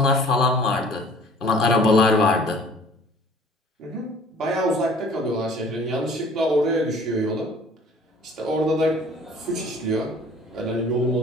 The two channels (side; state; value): both; normal; correlation 0.51